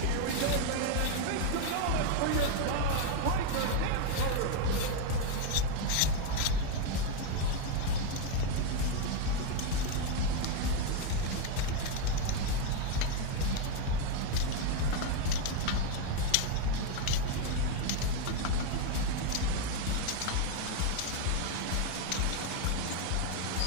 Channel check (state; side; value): different; both; correlation 0.01